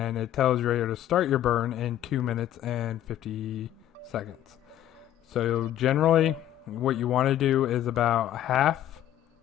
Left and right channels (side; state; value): right; quieter; 12.0 dB